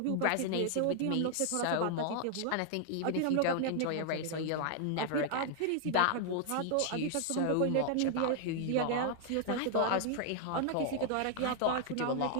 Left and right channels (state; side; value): different; both; correlation 0.00